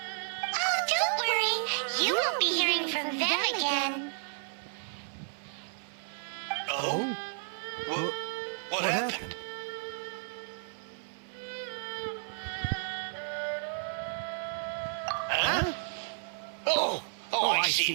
don't worry. You won't be hearing from them again. Oh? What happened? Huh? Oh, I see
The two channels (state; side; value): silent; left; 56 dB below the other